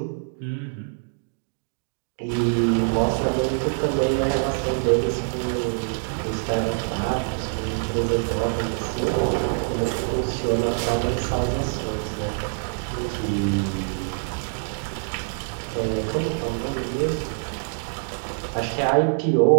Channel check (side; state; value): left; silent; digital silence